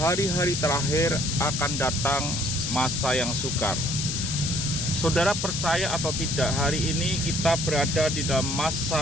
terakhir akan datang masa yang sukar. Saudara percaya atau tidak, hari ini kita berada di dalam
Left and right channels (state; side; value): noise; left; hiss, 2 dB below the sound